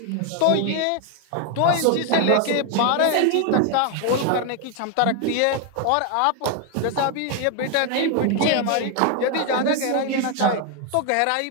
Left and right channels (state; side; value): different; both; correlation 0.01